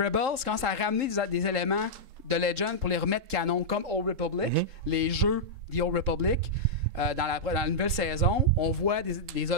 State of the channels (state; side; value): late; left; 3.7 ms